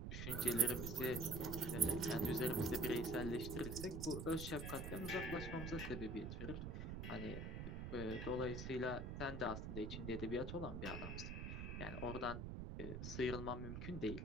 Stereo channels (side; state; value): right; noise; rumble, 5 dB below the sound